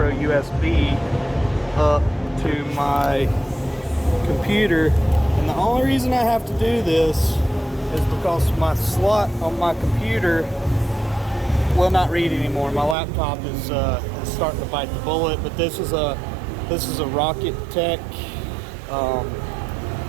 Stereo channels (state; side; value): drops out; left; at 13.0 s